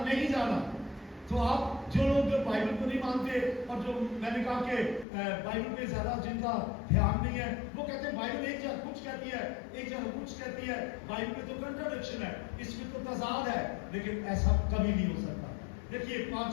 نہیں جانا۔ تو آپ جو لوگ بائبل کو نہیں مانتے اور جو میں نے کہا کہ بائبل پہ زیادہ جن کا دھیان نہیں ہے، وہ کہتے ہیں بائبل ایک جگہ کچھ کہتی ہے، ایک جگہ کچھ کہتی ہے، بائبل میں تو کنٹراڈکشن ہے، اس میں تو تضاد ہے، لیکن ایسا کبھی نہیں ہو سکتا۔ دیکھیے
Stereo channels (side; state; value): right; drops out; at 5.1 s